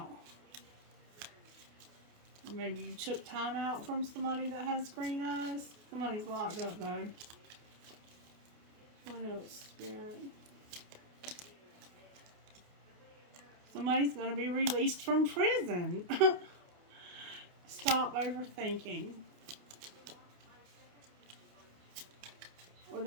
Or maybe you took time out from somebody that has green eyes. Somebody's locked up though. What else, Spirit? Somebody's going to be released from prison. Stop overthinking. Or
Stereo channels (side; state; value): left; late; 28 ms